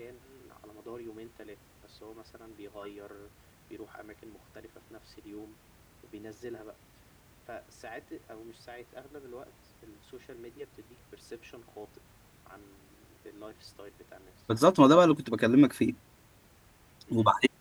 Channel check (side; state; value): both; identical; correlation 1.00